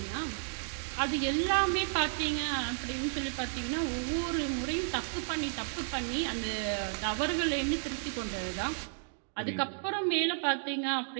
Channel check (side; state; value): left; silent; digital silence